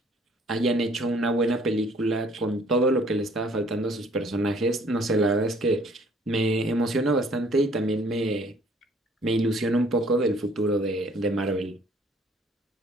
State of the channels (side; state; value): both; normal; correlation 0.59